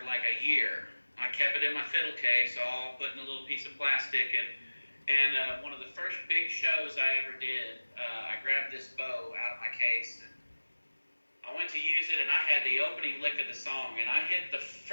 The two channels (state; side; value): inverted; both; correlation -1.00